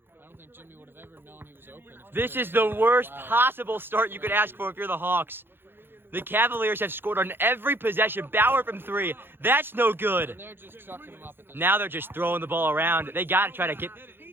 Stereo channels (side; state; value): left; late; 0.10 ms